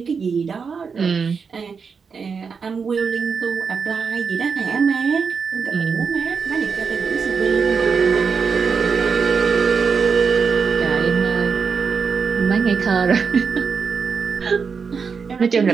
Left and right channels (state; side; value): quieter; left; 5.6 dB